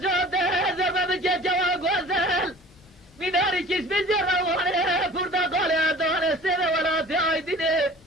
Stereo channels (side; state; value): both; normal; correlation 0.45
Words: زرمه بجه جوا گوزل میناری کش بجره وانه پرتقال دانه سنه ولاتی آیدینه